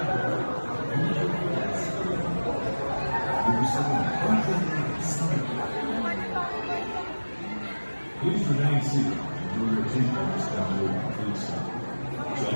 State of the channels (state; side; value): inverted; both; correlation -1.00